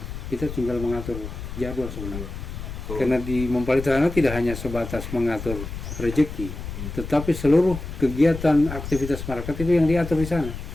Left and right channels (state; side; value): noise; left; rumble, 9 dB below the sound